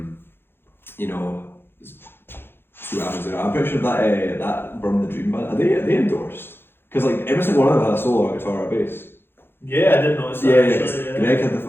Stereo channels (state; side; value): late; right; 0.11 ms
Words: what happens there. I'm pretty sure that Burn the Dream band, are they endorsed? Because like every single one of them had a solo, a guitar, or a bass. Yeah, I didn't notice that. Yeah. Greg had